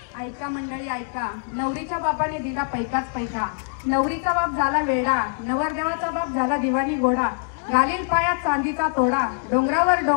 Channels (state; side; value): silent; right; digital silence